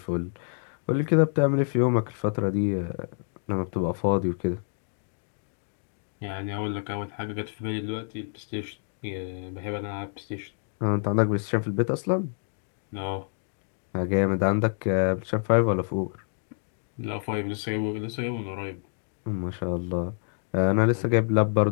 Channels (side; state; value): right; silent; digital silence